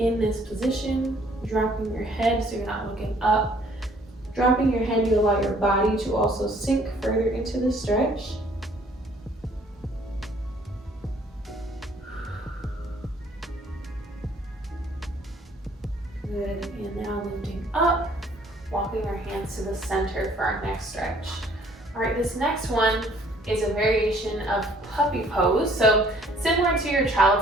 this position, dropping your head so you're not looking up. Dropping your head, you allow your body to also sink further into the stretch. Good, and now lifting up, walking our hands to the center for our next stretch. All right, this next one is a variation of puppy pose. So similar to your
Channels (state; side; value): normal; both; correlation 0.60